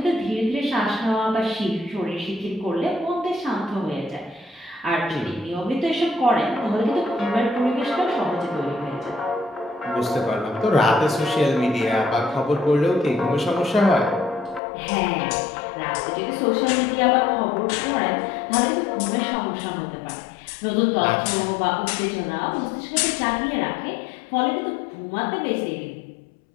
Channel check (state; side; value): drops out; right; at 14.6 s